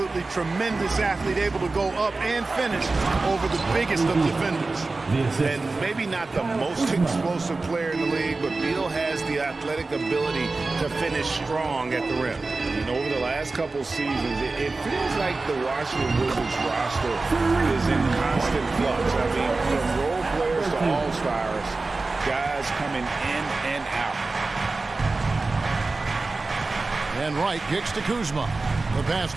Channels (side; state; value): left; quieter; 3.6 dB